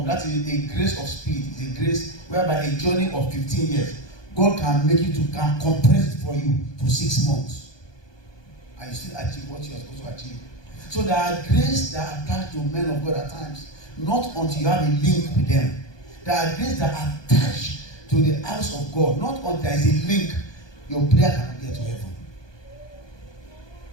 That is a grace of speed. It's a grace whereby a journey of 15 years, God can make you can compress it for you to 6 months, and you still achieve what you are supposed to achieve. So there are grace that are attached to men of God at times, not until you have a link with them. There are grace that are attached to the house of God, not until there is a link, your prayer cannot get to heaven.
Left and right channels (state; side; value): late; right; 1.2 ms